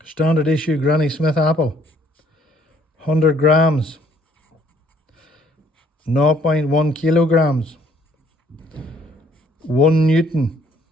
standard issue Granny Smith apple, 100 grams, 0.1 kilograms, 1 Newton.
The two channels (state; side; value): normal; both; correlation 0.62